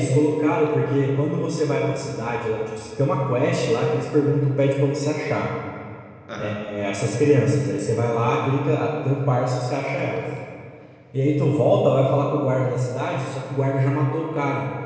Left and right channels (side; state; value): both; identical; correlation 1.00